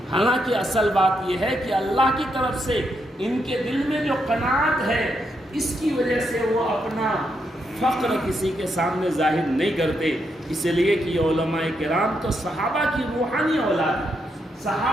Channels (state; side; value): normal; both; correlation 0.80